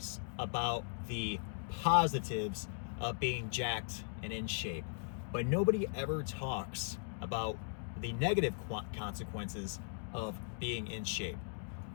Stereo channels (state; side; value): silent; right; digital silence